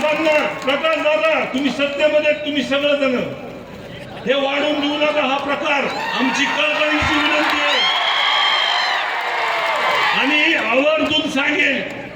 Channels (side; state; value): both; identical; correlation 1.00